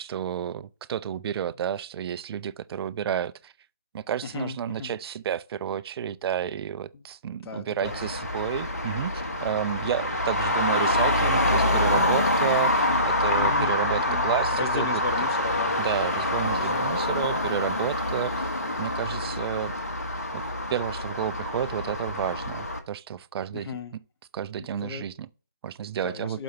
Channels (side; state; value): both; inverted; correlation -0.37